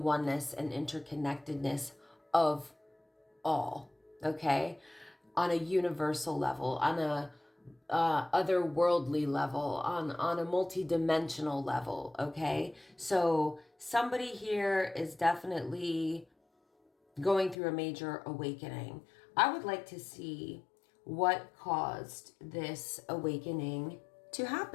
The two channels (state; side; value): drops out; right; at 17.6 s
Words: and interconnectedness of all, okay? On a universal level, on a otherworldly level, on a multi-dimensional level, okay? So somebody here is definitely going through a major awakening. I would like to see what caused this awakening to